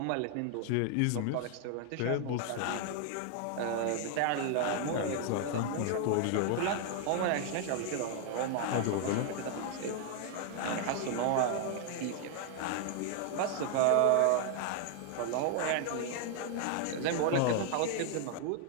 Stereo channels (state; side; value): different; both; correlation 0.00